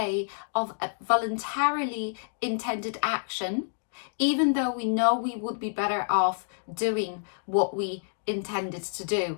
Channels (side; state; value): right; silent; digital silence